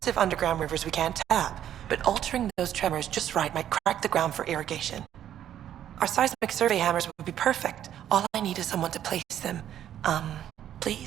underground rivers we can't tap, but altering those tremors just right might crack the ground for irrigation. Our seismic survey hammers would be perfect. All I need is someone to place them.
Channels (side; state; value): left; quieter; 10.8 dB